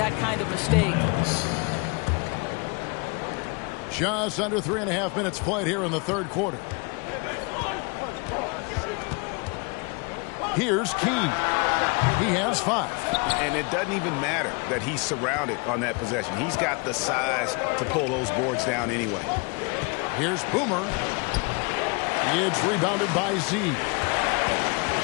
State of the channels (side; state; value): right; quieter; 31.2 dB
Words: kind of mistake. Just under 3.5 minutes played here in the third quarter. Here's Key. He has 5. And it doesn't even matter that he's surrounded on that possession. He's got the size to pull those boards down anyway. Here's Boomer. It's rebounded by Z.